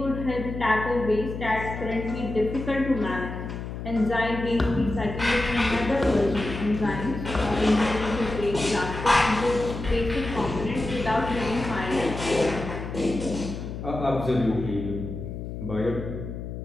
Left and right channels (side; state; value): left; noise; hum, 7 dB below the sound